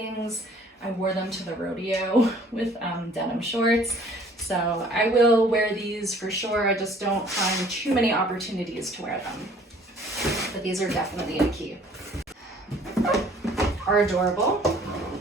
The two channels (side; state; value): both; normal; correlation 0.55